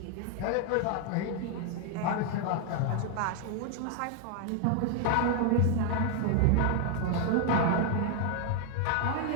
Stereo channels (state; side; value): different; both; correlation 0.00